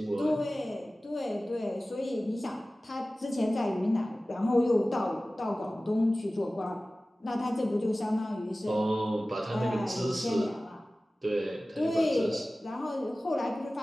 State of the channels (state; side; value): normal; both; correlation 0.97